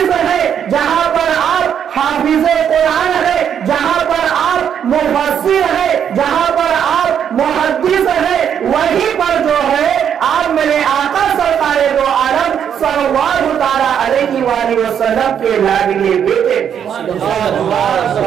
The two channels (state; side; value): quieter; left; 8.5 dB